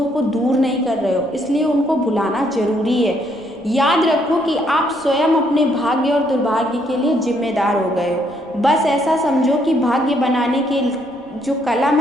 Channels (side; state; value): left; noise; rumble, 29 dB below the sound